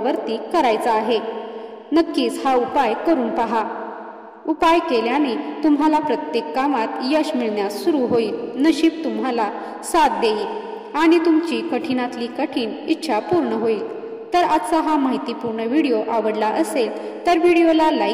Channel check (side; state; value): both; identical; correlation 1.00